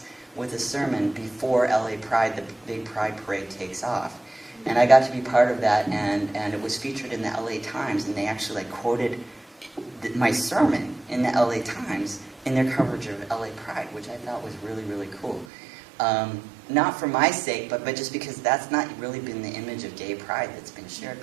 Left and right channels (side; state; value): left; drops out; at 15.5 s